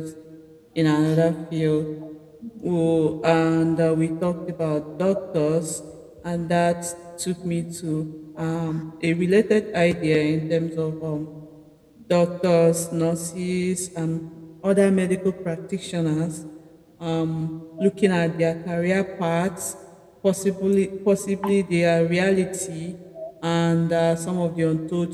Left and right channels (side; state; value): both; identical; correlation 1.00